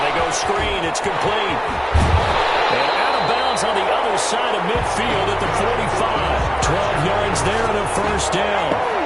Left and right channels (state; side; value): identical; both; correlation 1.00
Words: they go screen. It's complete. And out of bounds on the other side of midfield at the 45. 12 yards there and a first down.